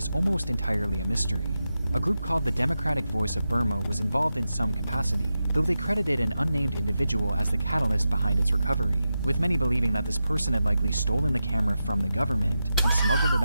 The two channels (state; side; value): inverted; both; correlation -0.90